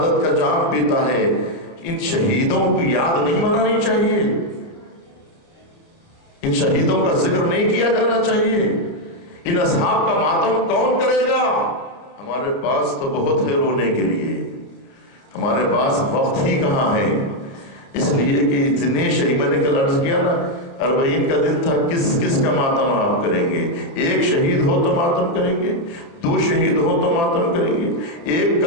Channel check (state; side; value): late; right; 30 ms